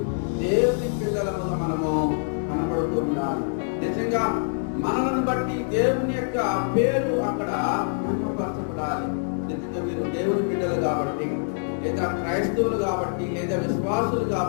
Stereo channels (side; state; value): right; silent; digital silence